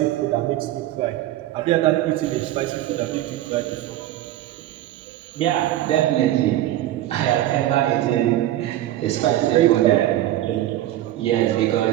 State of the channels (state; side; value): quieter; left; 14.1 dB